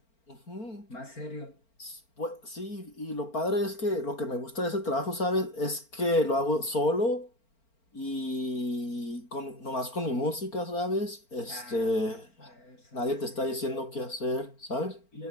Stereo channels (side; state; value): right; late; 4.4 ms